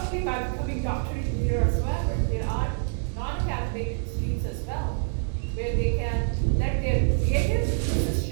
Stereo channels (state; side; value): silent; left; digital silence